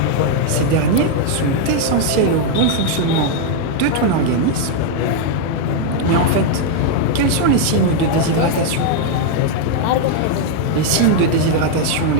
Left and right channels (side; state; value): both; different; correlation 0.00